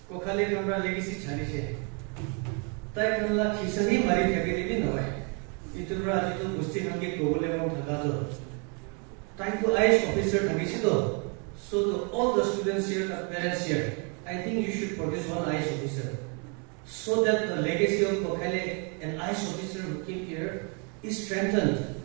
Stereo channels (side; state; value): left; quieter; 36.0 dB